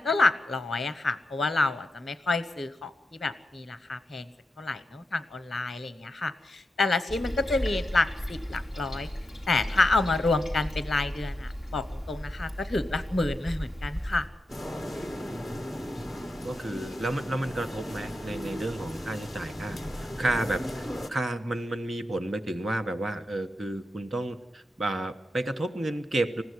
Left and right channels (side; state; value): both; normal; correlation 0.88